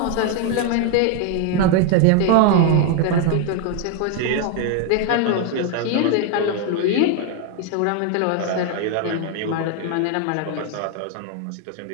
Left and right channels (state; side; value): different; both; correlation 0.01